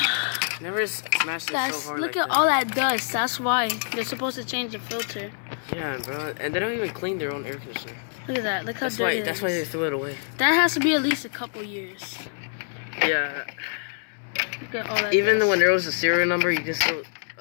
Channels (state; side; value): silent; right; 61 dB below the other